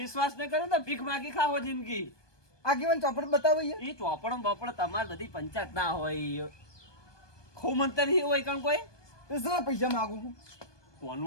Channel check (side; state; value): right; late; 1.2 ms